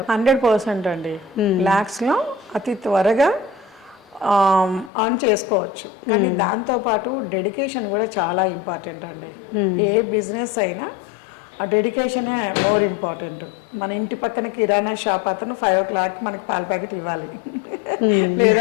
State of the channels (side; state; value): right; drops out; at 4.9 s